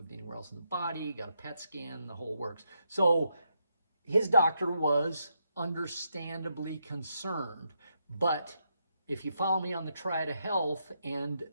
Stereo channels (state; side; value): inverted; both; correlation -0.80